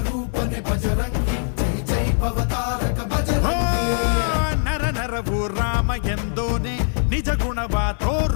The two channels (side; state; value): right; silent; digital silence